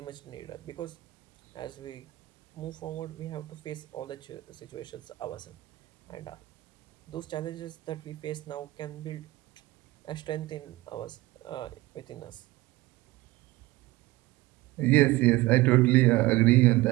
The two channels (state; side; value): quieter; left; 19.2 dB